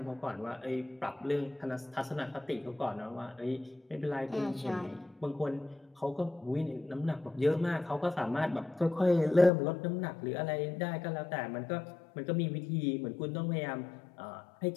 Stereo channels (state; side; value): drops out; right; at 9.5 s